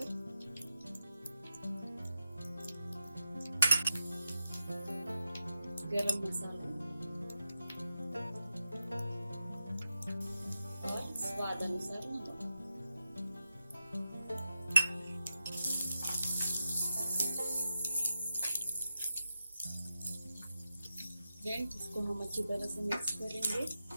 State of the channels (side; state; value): both; inverted; correlation -0.88